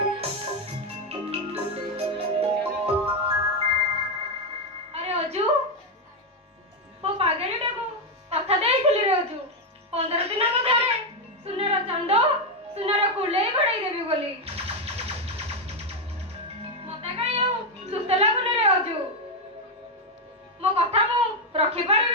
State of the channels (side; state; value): both; normal; correlation 0.04